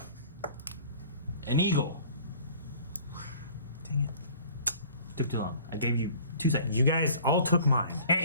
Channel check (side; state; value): both; inverted; correlation -0.49